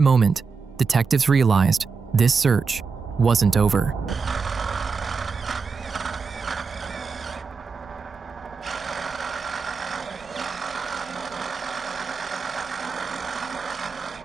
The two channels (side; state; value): left; quieter; 5.1 dB